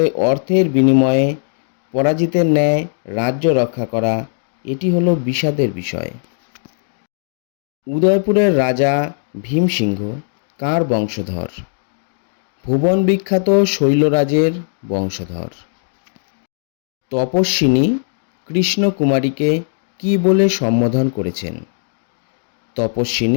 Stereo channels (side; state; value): right; silent; digital silence